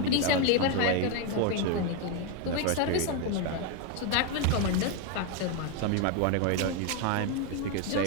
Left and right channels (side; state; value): both; different; correlation 0.01